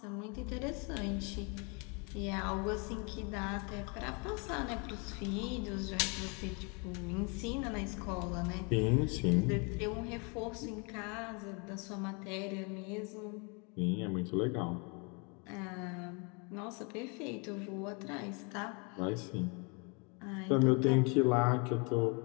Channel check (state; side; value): quieter; right; 33.3 dB